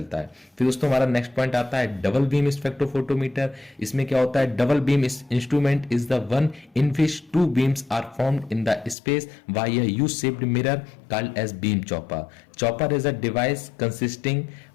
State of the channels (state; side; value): drops out; right; at 9.0 s